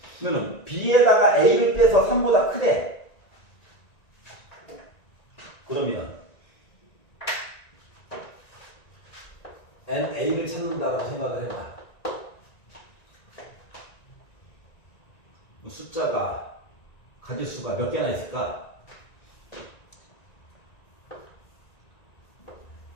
그러면 B에다가 A를 빼서 3보다 크대. 그러면 NA를 찾는다라고 생각을 해봐. 숫자가 가지수가 몇 개나 있을까?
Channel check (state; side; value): late; right; 1.9 ms